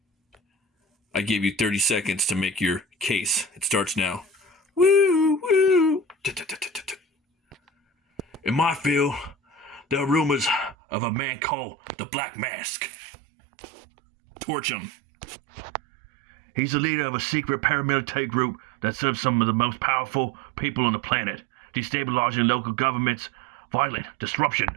I gave you 30 seconds to make your case. It starts now. Woo, woo. In my field, there are rumors of a man called the Black Mask. Torch him. He's the leader of a secret paramilitary group that serves some of the most powerful people on the planet, destabilizing local governments, violent disruption,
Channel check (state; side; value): drops out; left; at 10.8 s